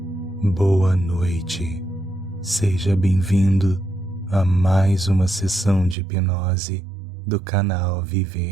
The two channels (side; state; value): left; drops out; at 6.0 s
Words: Boa noite. Seja bem-vindo a mais uma sessão de hipnose do canal